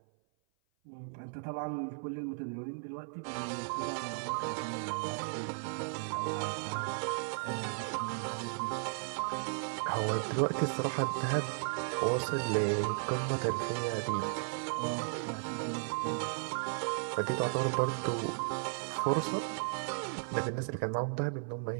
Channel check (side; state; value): left; silent; 54 dB below the other